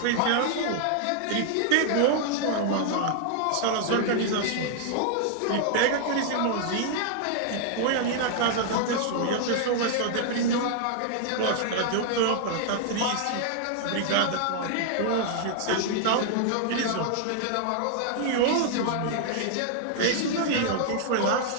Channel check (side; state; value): both; different; correlation -0.01